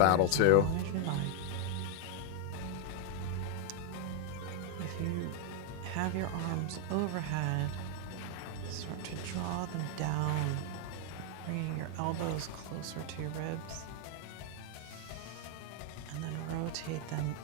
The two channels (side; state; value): both; different; correlation 0.00